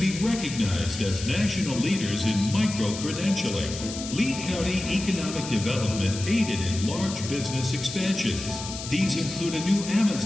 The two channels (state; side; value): noise; left; hiss, 9 dB below the sound